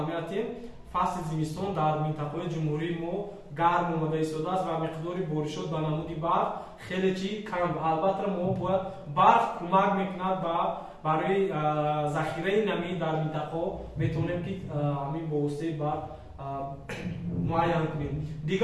фасли зимистон дар минтақаҳои ҷумҳурӣ мо гарм омада истодааст ва миқдори боришот ба намуди барф хеле чи кам. албатта мо бояд барф кӯмак мекунад барои захираи намӣ дар минтақаҳо метавонем ки ҳамин бо воситаи барф муайян кунем.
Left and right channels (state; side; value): identical; both; correlation 1.00